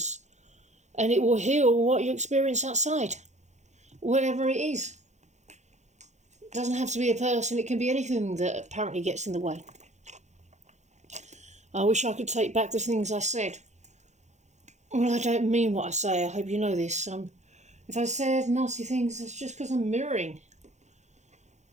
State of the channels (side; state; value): left; late; 0.33 ms